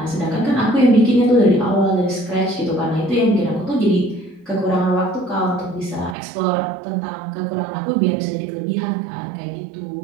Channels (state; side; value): drops out; left; at 6.2 s